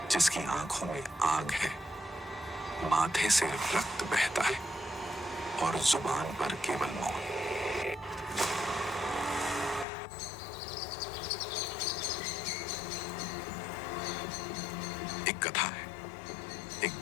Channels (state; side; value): drops out; right; at 9.9 s